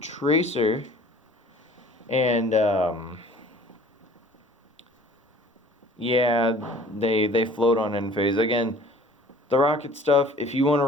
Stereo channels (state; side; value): normal; both; correlation 0.50